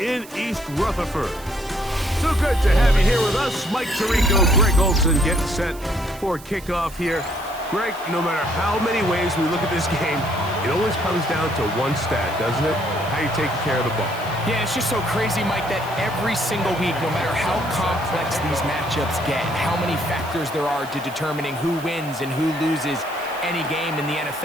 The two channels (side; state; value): right; noise; hiss, 19 dB below the sound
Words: in East Rutherford. So good to have you here with us. Mike Tirico, Greg Olson getting set for kickoff here. Greg, no matter how many ways we look at this game, it always comes down to one stat, doesn't it? How you taking care of the ball. Yeah, it's just so crazy, Mike, that every single week, no matter how complex these matchups get, how many factors there are to determining who wins and who loses any game in the